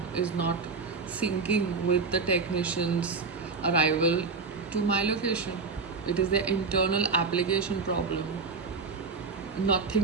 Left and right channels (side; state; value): left; quieter; 4.6 dB